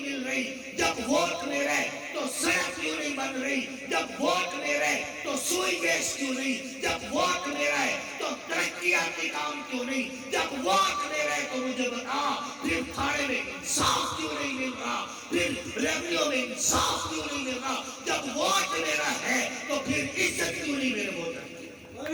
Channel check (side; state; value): both; identical; correlation 1.00